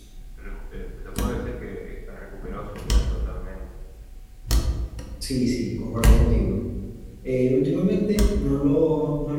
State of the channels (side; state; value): both; identical; correlation 1.00